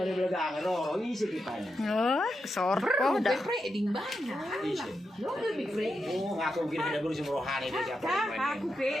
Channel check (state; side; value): normal; both; correlation 0.86